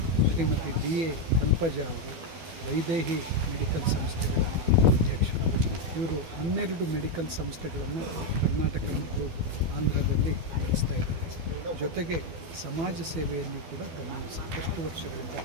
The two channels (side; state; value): left; late; 12 ms